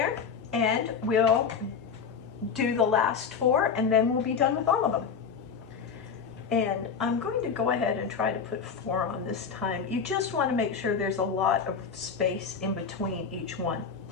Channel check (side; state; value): right; quieter; 6.2 dB